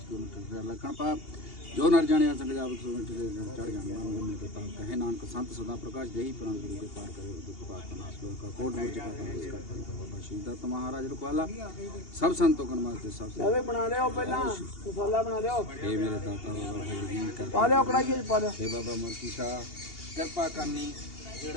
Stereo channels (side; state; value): right; late; 2.8 ms